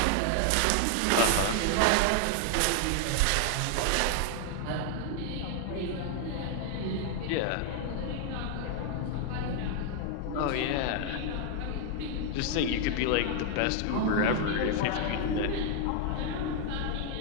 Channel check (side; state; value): both; different; correlation 0.00